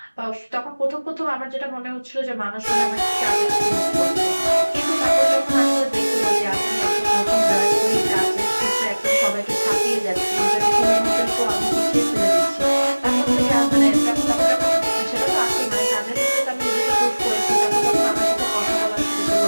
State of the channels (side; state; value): both; inverted; correlation -1.00